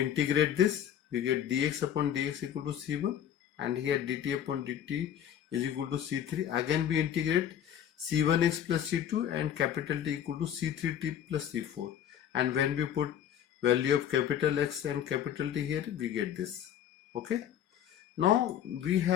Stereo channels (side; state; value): right; quieter; 9.9 dB